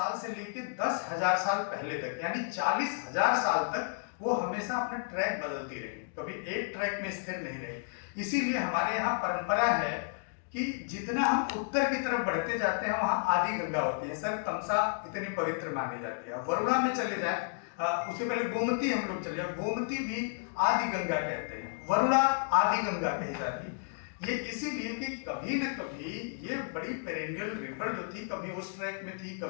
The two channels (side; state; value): right; silent; digital silence